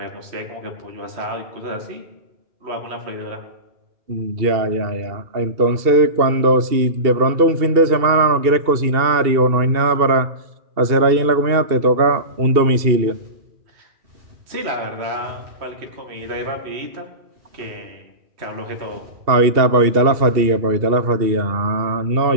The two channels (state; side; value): late; left; 2.7 ms